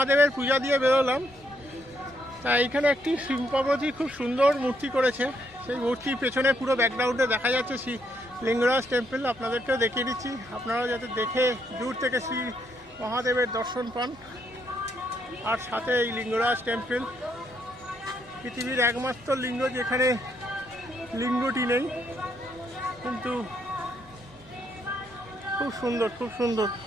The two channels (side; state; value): both; normal; correlation 0.74